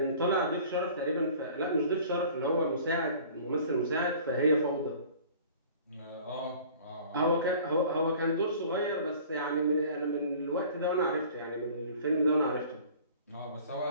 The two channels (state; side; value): inverted; both; correlation -0.47